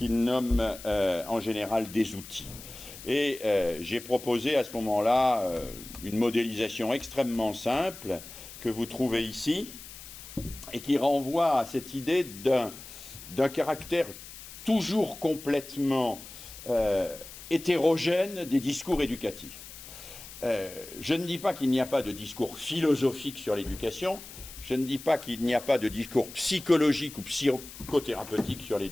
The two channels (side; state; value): left; noise; hiss, 15 dB below the sound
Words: nomme en général des outils. Et j'ai proposé à ce moment-là une modélisation extrêmement simple que vous trouvez ici et qui renvoie à cette idée d'un caractère toujours complètement hétérogène des discours éducatifs. Je ne dis pas qu'il n'y a pas de discours philosophique sur l'éducation, je ne dis pas qu'il n'y a pas de discours psychologique ou psychothérapeutique sur